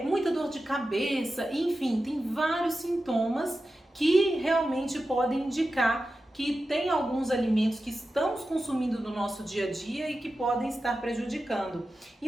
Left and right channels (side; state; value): both; normal; correlation 0.93